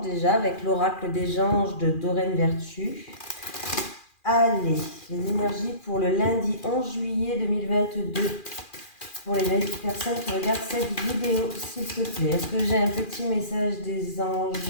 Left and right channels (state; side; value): late; right; 2.4 ms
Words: déjà avec l'oracle des anges de Doreen Vertu. Allez, les énergies pour le lundi 11 juillet 2022. Pour les personnes qui regardent cette vidéo, s'il te plaît. Est-ce que j'ai un petit message des